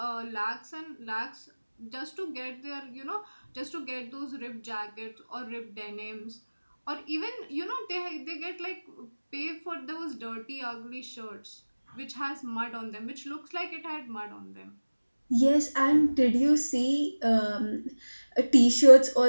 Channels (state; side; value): inverted; both; correlation -1.00